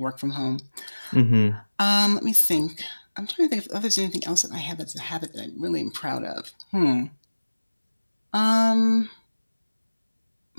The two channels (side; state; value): both; inverted; correlation -1.00